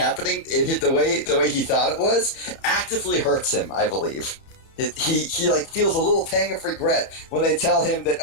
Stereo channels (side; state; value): right; late; 31 ms